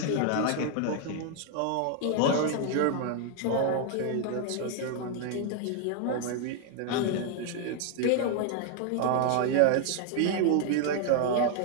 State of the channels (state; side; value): different; both; correlation 0.00